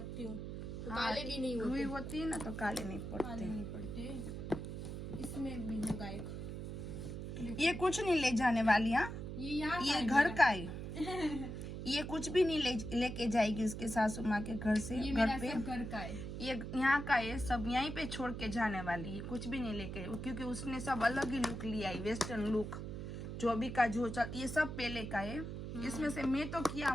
हूँ तो काले भी नहीं होते। रुई होती है ना तो काले नहीं काले पड़ते। नहीं पड़ते। इसमें भी होगा एक। ये कुछ नहीं ले जाने वाली, हाँ ये यहाँ ये घर का है। ये कुछ भी नहीं लेके जाएगी उसके सासू माँ के घर से। ये घर मेरा पे सब घर का है। ये यहाँ का है, सब यहीं पे छोड़ के जाने वाली है, कुछ भी नहीं लेके, क्योंकि उसने सब अलग ही लुक लिया है, वेस्टर्न लुक। जो अभी का जो चल, ये सब पहले का है। इसमें से मैं तो किया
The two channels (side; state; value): right; noise; hum, 6 dB below the sound